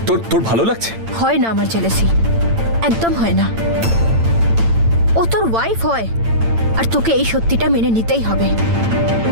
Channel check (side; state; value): left; late; 8.9 ms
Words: তোর তোর ভালো লাগছে? হয় না আমার জেলেসি, একদম হয় না। ও তোর ওয়াইফ হয়, আর তোকে এই সত্যিটা মেনে নিতেই হবে।